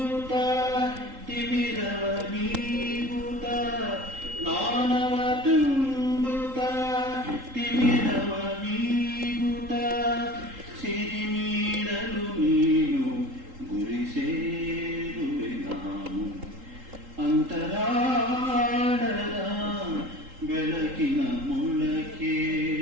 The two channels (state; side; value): late; left; 3.8 ms